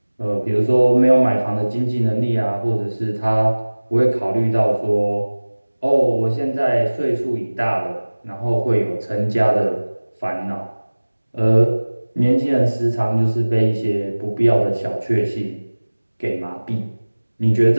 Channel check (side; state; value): both; inverted; correlation -1.00